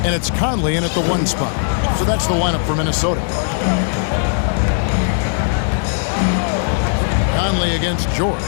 And it's Conley in at the 1 spot. So that's the lineup for Minnesota. Conley against George.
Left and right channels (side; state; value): right; silent; digital silence